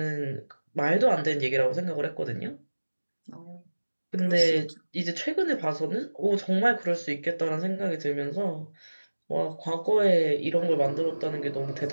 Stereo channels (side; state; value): both; inverted; correlation -1.00